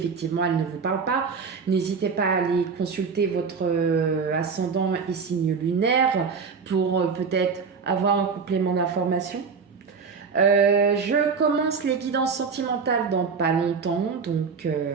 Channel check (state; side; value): quieter; left; 5.5 dB